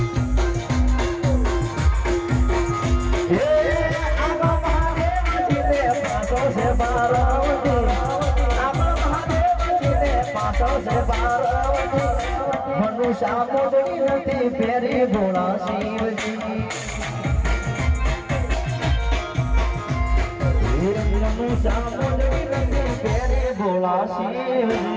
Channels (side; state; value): both; identical; correlation 1.00